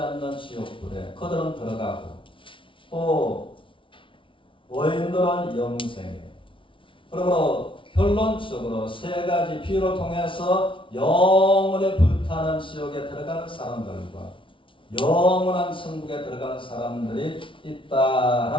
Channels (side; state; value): right; late; 0.25 ms